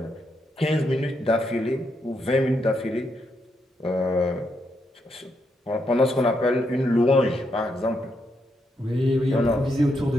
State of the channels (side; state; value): both; normal; correlation 0.80